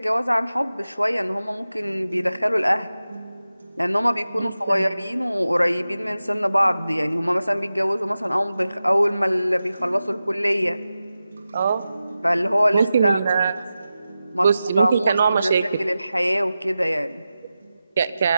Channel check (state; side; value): inverted; both; correlation -0.93